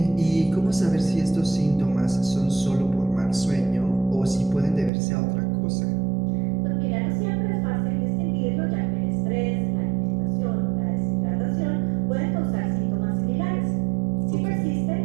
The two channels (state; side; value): drops out; left; at 4.9 s